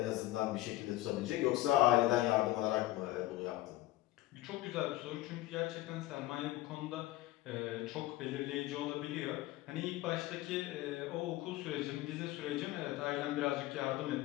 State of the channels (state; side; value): quieter; right; 16.8 dB